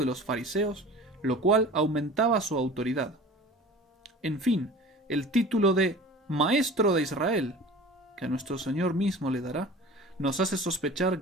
los fariseos, lo cual aumentaba su autoridad. En fin, el título de Maestro de Israel, que a nuestro Señor mismo le dará, nos hace sospechar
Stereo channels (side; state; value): both; normal; correlation 0.40